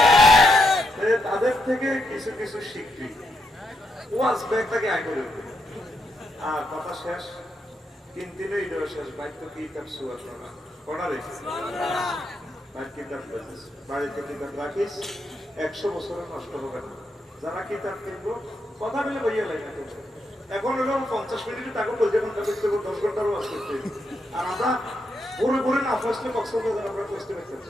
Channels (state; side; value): normal; both; correlation 0.80